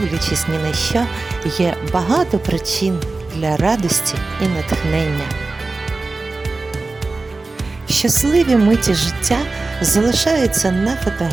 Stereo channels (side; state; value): left; quieter; 3.5 dB